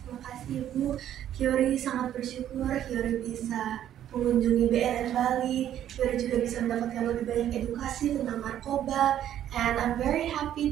terima kasih Ibu. Yori sangat bersyukur Yori bisa mengunjungi BNN Bali. Yori juga bisa mendapatkan lebih banyak edukasi tentang narkoba. And I'm very happy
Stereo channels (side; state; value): left; quieter; 11.1 dB